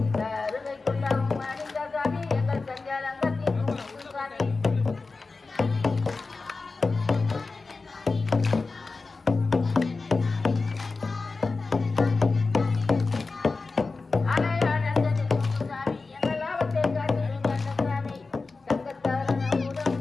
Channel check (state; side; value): quieter; right; 3.9 dB